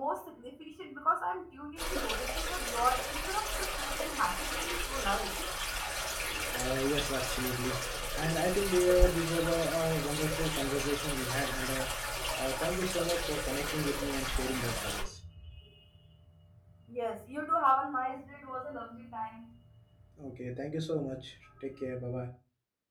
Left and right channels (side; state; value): both; identical; correlation 1.00